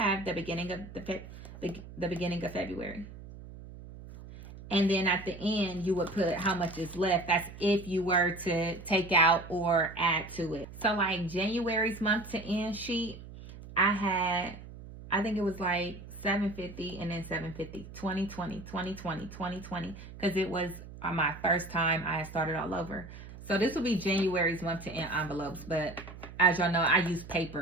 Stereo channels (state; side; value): noise; right; hum, 15 dB below the sound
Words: the beginning of the beginning of February. And then at the end, you would put how much is left. That's if you were to take out or add to it. So like January's month to end sheet, I think it was like $750 and then $750, 2020, 2020, 2020, because it was my first time I had started all over. So this will be January's month to end envelopes, but as y'all know, I used